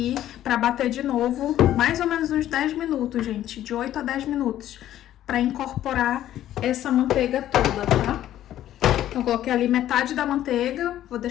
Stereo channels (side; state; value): right; quieter; 12.5 dB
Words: pra bater de novo, mais ou menos uns 10 minutos, gente. De 8 a 10 minutos. Pra incorporar essa manteiga toda, tá? Então, coloquei ali metade da manteiga. Vou